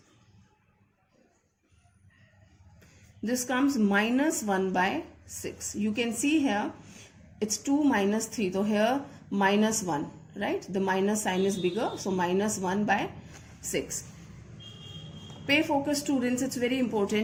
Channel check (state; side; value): identical; both; correlation 1.00